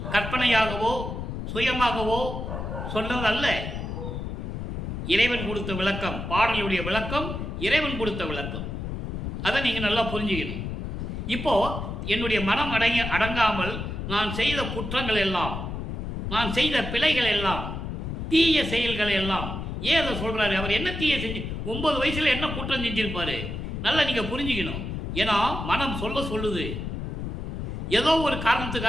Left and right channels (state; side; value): noise; left; rumble, 5 dB below the sound